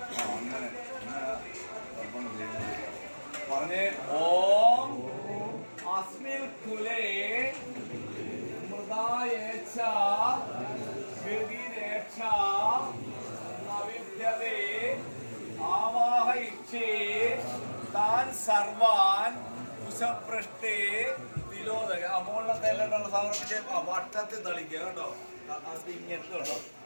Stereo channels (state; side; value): inverted; both; correlation -1.00